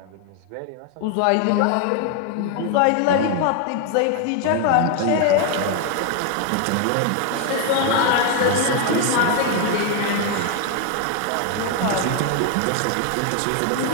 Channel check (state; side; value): different; both; correlation 0.01